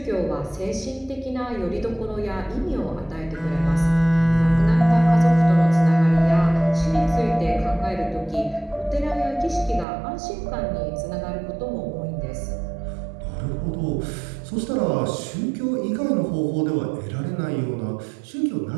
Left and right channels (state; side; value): drops out; left; at 9.9 s